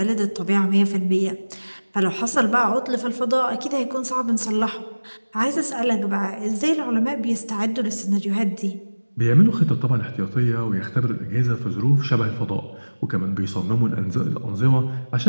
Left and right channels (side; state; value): both; inverted; correlation -1.00